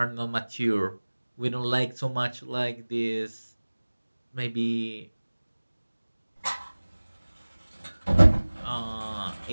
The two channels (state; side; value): inverted; both; correlation -1.00